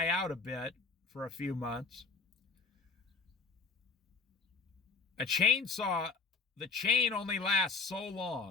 out a bit for a few months. A chainsaw, the chain only lasts so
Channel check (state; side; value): quieter; right; 4.4 dB